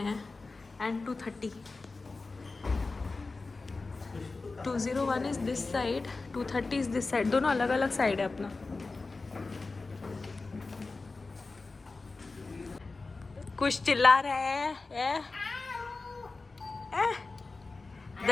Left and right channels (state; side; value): quieter; right; 3.7 dB